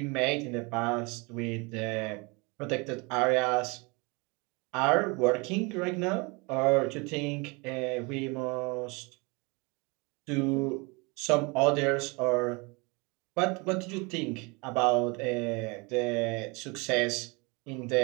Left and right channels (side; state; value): left; quieter; 28.5 dB